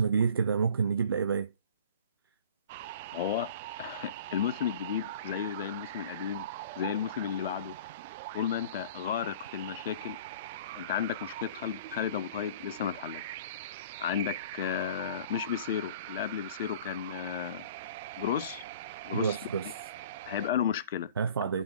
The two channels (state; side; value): inverted; both; correlation -0.46